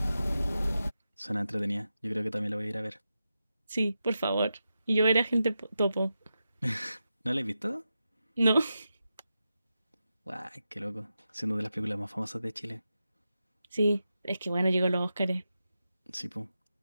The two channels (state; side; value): inverted; both; correlation -0.89